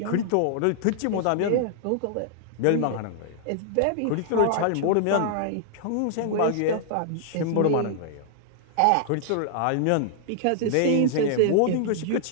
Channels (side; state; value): both; different; correlation -0.01